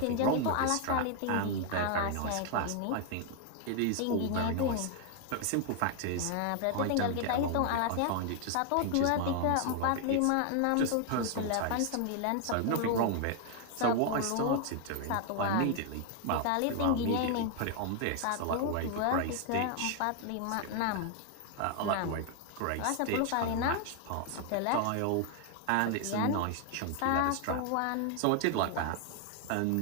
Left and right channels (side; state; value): both; different; correlation 0.00